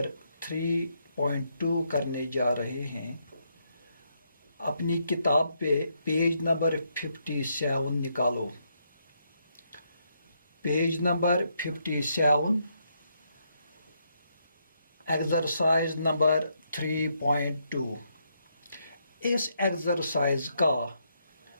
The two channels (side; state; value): both; inverted; correlation -0.77